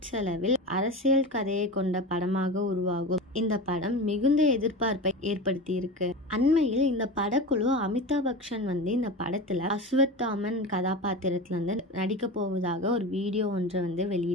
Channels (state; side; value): normal; both; correlation 0.27